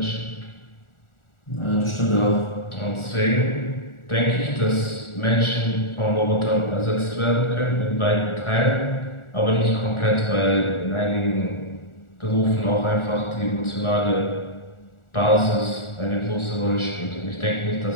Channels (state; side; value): late; right; 1.4 ms